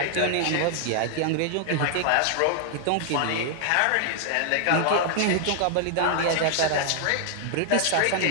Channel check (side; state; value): both; different; correlation 0.00